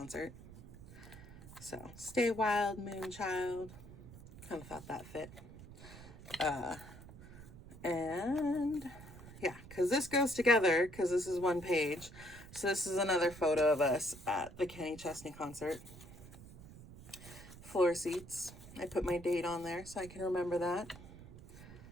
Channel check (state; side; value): noise; right; rumble, 17 dB below the sound